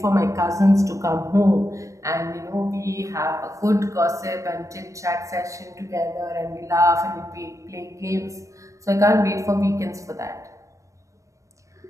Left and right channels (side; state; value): left; late; 0.15 ms